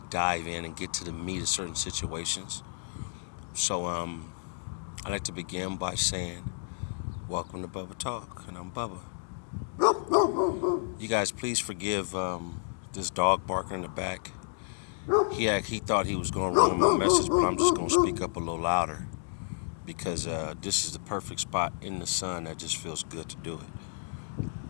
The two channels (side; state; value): right; silent; digital silence